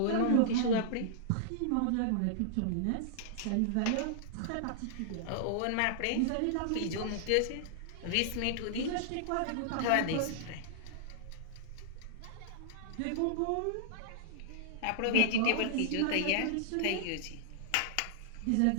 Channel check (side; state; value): both; different; correlation -0.01